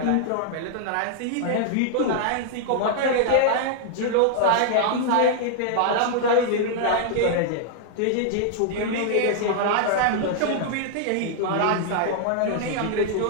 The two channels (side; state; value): both; different; correlation -0.01